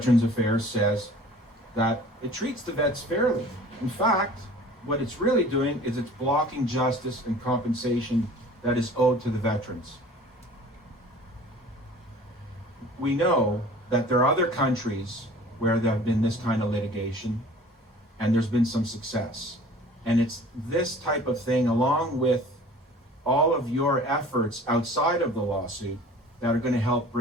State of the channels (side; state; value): both; normal; correlation 0.46